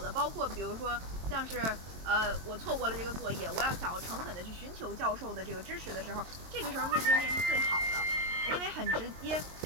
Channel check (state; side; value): late; left; 22 ms